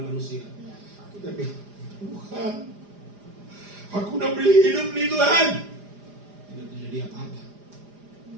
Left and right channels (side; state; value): left; late; 4.9 ms